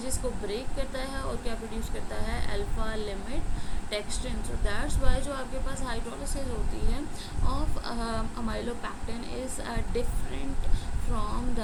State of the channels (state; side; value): identical; both; correlation 1.00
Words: को ब्रेक करता है और क्या प्रोड्यूस करता है, alpha limit dextrin. So that's why जो आपके पास हाइड्रोलिसिस होती है of amylopectin is different from